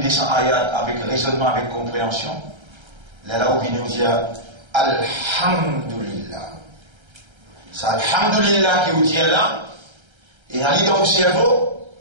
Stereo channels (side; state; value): left; late; 1.3 ms